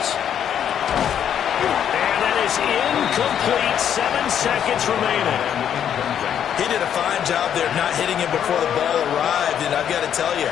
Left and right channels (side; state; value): right; quieter; 9.2 dB